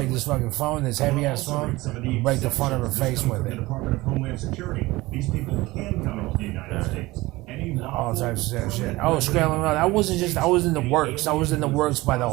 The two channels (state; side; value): quieter; left; 20.1 dB